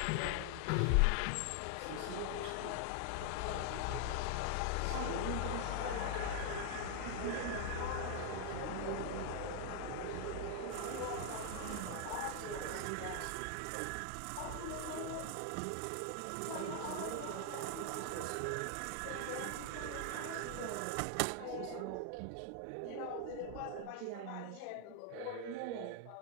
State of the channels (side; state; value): both; different; correlation 0.00